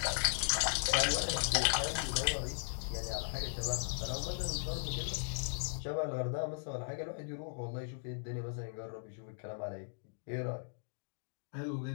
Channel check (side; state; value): right; silent; digital silence